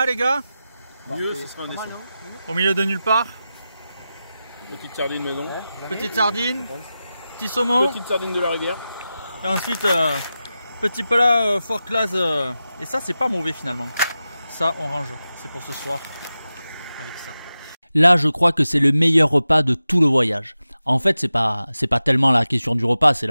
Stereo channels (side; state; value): both; inverted; correlation -0.93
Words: les gars? Mieux, ce sera un dessin. Au milieu de nulle part. Petite sardine maison. Petite sardine, petit saumon. Petite sardine de la rivière. Et ensuite, petit plat fort classe. Et ça, c'est pas mauvais finalement. Ça, on range. C'est pour ce soir. Avec ça. Là, je crois que c'est le meilleur repas de tout le voyage. En fait, c'est pas tellement la question du repas, c'est